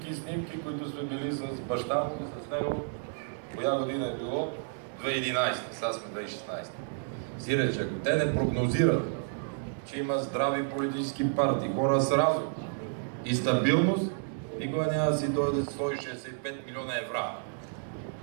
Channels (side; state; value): left; silent; digital silence